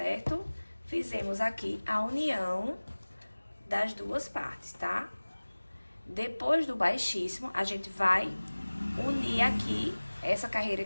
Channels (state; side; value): inverted; both; correlation -1.00